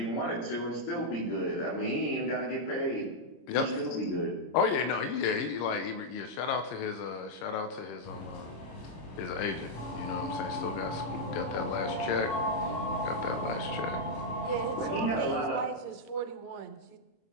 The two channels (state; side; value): late; right; 26 ms